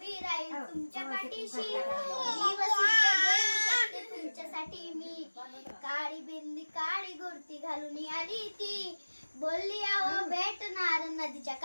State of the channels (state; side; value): inverted; both; correlation -1.00